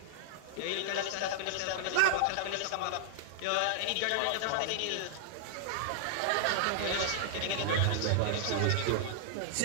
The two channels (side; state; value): both; different; correlation -0.01